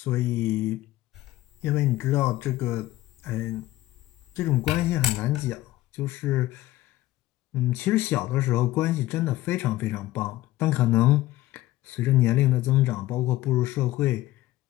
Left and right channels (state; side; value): quieter; right; 16.3 dB